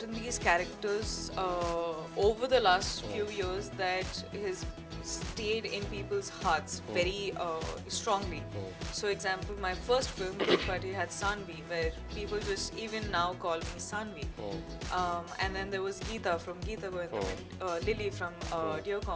these characters over the last few years that has stayed in people's hearts very strongly. So example, my first film, Kirik Party, had Sanvi, where people just even now call me Sanvi. And then there was Geeta from Geeta Govindam, Lily from Dear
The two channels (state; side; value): identical; both; correlation 1.00